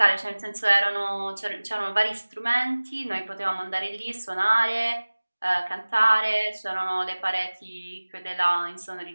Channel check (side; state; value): both; inverted; correlation -1.00